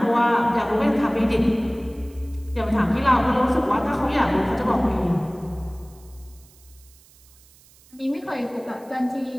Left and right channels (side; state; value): right; noise; hiss, 27 dB below the sound